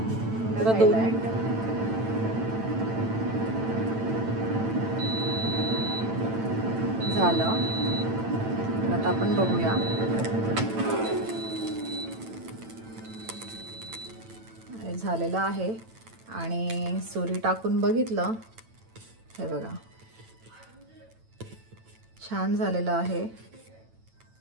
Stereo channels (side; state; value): left; late; 9.0 ms